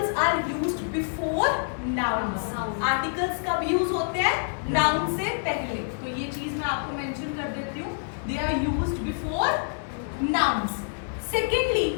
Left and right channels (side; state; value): right; silent; digital silence